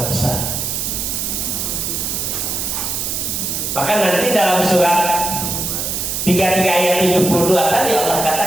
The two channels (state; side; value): noise; right; hiss, 2 dB below the sound